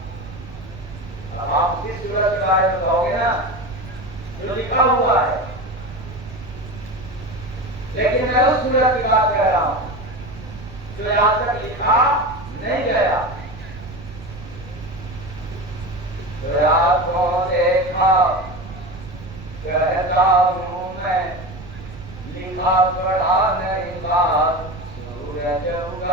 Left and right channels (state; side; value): noise; right; rumble, 15 dB below the sound